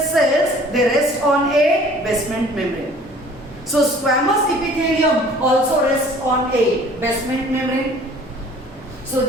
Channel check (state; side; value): normal; both; correlation 0.51